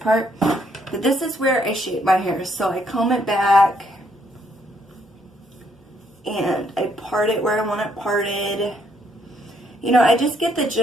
but this is where I shape my hair. So I comb it back and I part it where I want it parted. You know, I just get the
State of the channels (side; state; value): both; normal; correlation 0.71